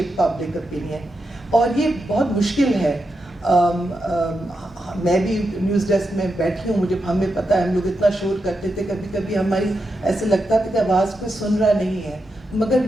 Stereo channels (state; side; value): normal; both; correlation 0.86